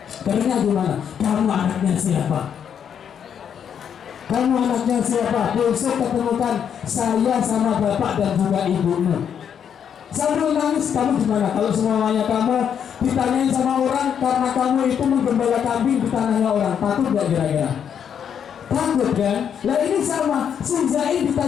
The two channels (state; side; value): quieter; right; 8.2 dB